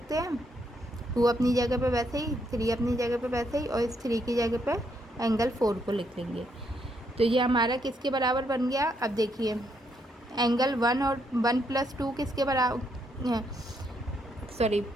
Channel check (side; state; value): both; normal; correlation 0.75